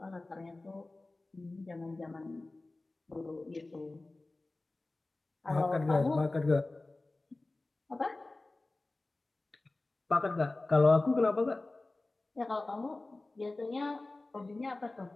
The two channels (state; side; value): quieter; right; 3.0 dB